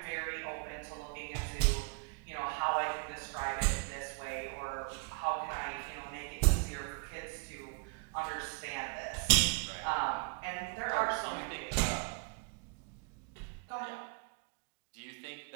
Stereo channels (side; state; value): left; quieter; 34.9 dB